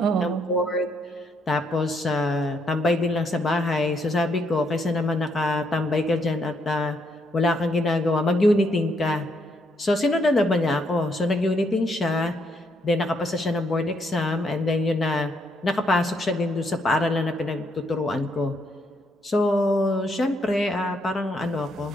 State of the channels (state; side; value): normal; both; correlation 0.74